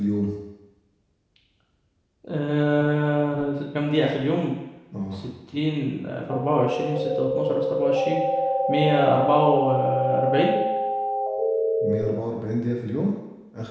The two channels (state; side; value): identical; both; correlation 1.00